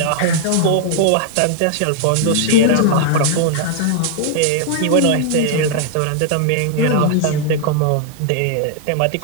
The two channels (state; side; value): different; both; correlation -0.01